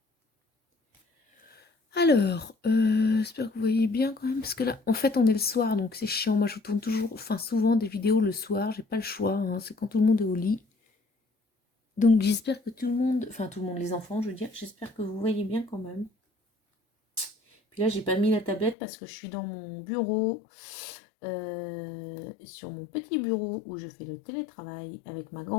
Alors, j'espère que vous voyez bien quand même, parce que là, en fait, on est le soir, donc c'est chiant. Moi, je tourne toujours, enfin souvent des vidéos le soir, j'ai pas le choix, hein, c'est quand tout le monde est au lit. Donc j'espère que tout le monde, enfin tout le monde, les enfants, je veux dire, j'espère que vous voyez bien quand même. Puis là, j'ai pas mis la tablette parce que je suis dans mon bureau, sur mon petit bureau où je fais le télétravail avec ma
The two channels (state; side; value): drops out; right; at 18.8 s